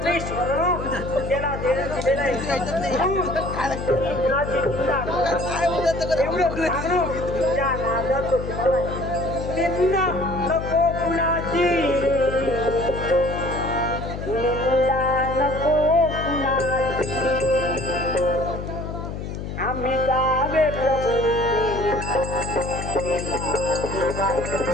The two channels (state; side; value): noise; left; hum, 6 dB below the sound